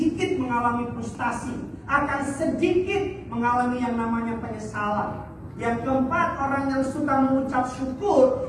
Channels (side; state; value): both; identical; correlation 1.00